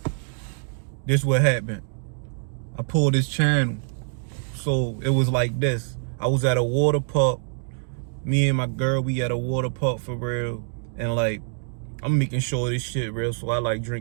this what happened. I pulled this channel. So it was like this. I was at a water park. Me and my girl, we at a water park for real. And like, I'm making sure this shit real. So I like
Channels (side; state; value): left; silent; digital silence